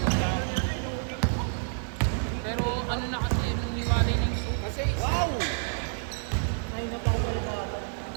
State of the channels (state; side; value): silent; left; digital silence